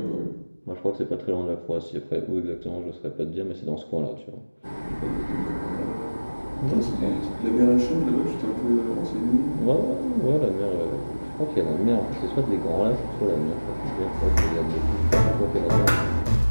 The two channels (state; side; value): inverted; both; correlation -1.00